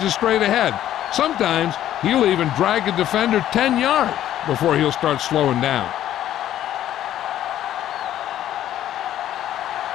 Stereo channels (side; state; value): right; quieter; 12.1 dB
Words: straight ahead. Sometimes he'll even drag a defender 10 yards before he'll start slowing down.